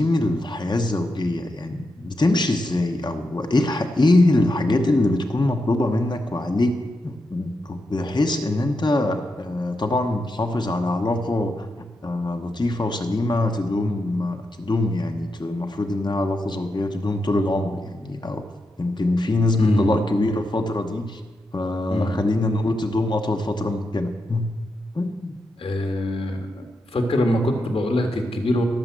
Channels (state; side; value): normal; both; correlation 0.86